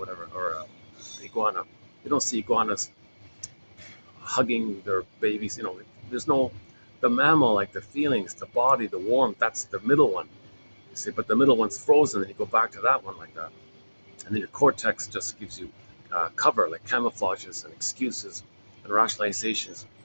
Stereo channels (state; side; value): inverted; both; correlation -1.00